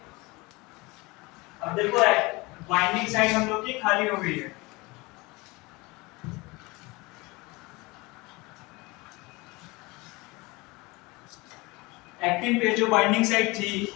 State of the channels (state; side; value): quieter; right; 24.0 dB